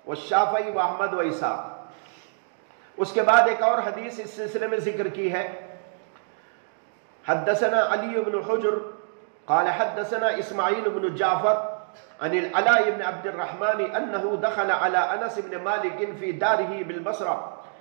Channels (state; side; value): silent; left; digital silence